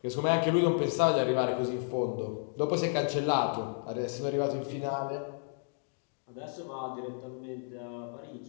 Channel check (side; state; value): right; silent; digital silence